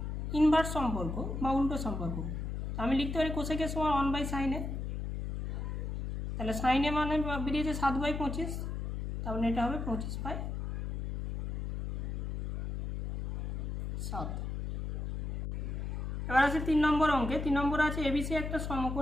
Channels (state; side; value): noise; left; hum, 4 dB below the sound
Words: ইনভার্স সম্পর্ক বা উল্টো সম্পর্ক, আমি লিখতে পারি কোসেকের সমান 1/sin এ। তাহলে সাইন এ মানে বেরিয়েছে 7/25, তাহলে এটা হবে 25/7। এবার আছে 3 নম্বর অঙ্কে। 3 নম্বর আছে এবিসি একটা